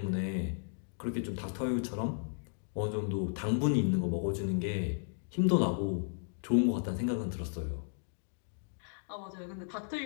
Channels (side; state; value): right; silent; digital silence